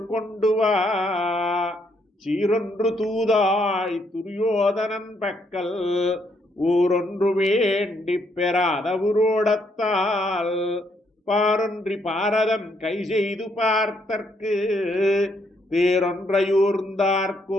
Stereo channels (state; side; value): normal; both; correlation 0.73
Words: கொண்டு வா சீரொன்று தூதாய் துரியோதனன் பக்கல் ஊரொன்று வேண்டி பெறாத உரோடத்தால் பாரொன்றி பாரதம் கை செய்து பார்த்தற்கு